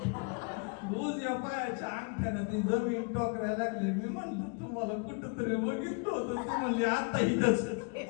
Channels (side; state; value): right; quieter; 35.3 dB